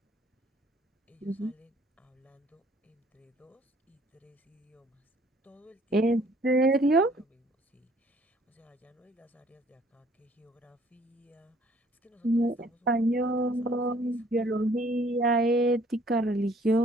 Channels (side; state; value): both; normal; correlation 0.59